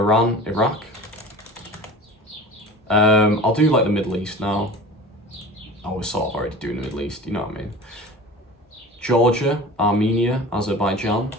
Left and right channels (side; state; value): both; normal; correlation 0.37